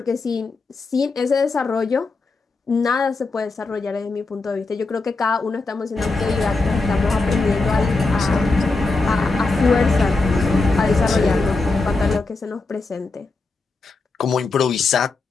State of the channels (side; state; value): right; quieter; 3.7 dB